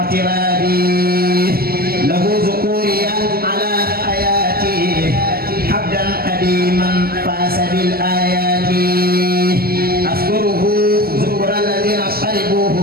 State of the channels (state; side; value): late; left; 0.44 ms